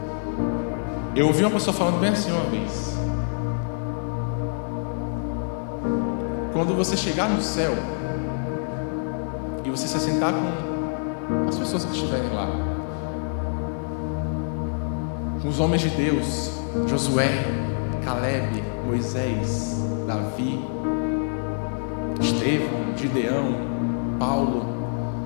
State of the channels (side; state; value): right; silent; digital silence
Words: Eu ouvi uma pessoa falando bem assim uma vez: quando você chegar no céu e você se assentar com as pessoas que estiverem lá, com os homens de Deus, Josué, Caleb, Moisés, Davi, Estevão, Gideão, Paulo,